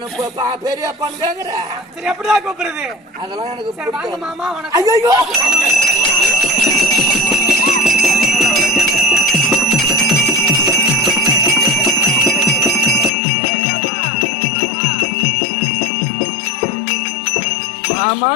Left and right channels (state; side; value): drops out; right; at 13.1 s